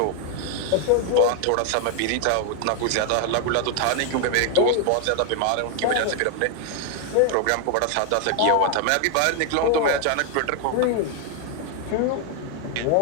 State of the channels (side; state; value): both; different; correlation 0.00